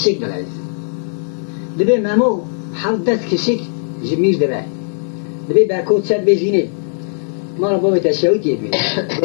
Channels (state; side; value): silent; right; digital silence